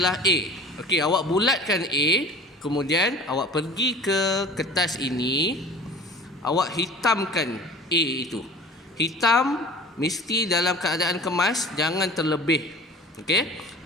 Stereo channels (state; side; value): normal; both; correlation 0.42